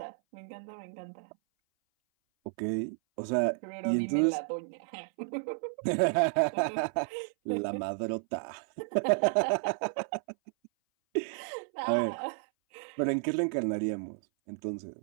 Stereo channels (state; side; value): silent; left; 56 dB below the other